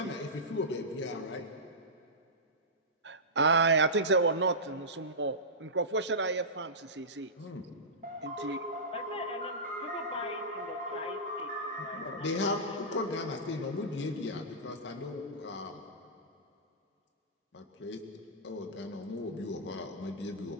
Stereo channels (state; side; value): normal; both; correlation -0.17